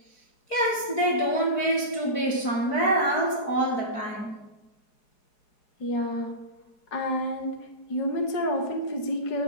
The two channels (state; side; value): late; right; 4.8 ms